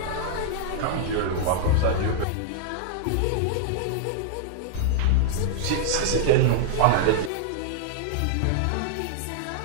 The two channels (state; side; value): different; both; correlation -0.01